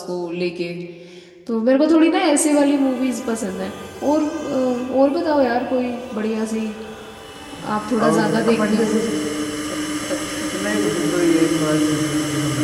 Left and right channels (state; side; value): identical; both; correlation 1.00